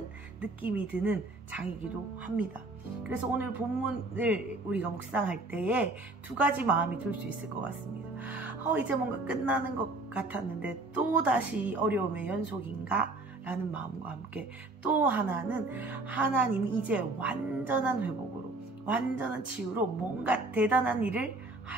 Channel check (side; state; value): left; quieter; 3.0 dB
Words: 느낌이 드는 장이기도 합니다. 그래서 오늘 본문을 우리가 묵상할 때에 두 가지 마음이 들 수 있을 것 같습니다. 이제 뭔가 끝나는 것 같았는데 또 다시 어려움의 연속인가? 라는 마음과 함께, 또 하나는 하나님이 이제 완전한 회복으로, 완전한 치유로 뭔가 대단한 일을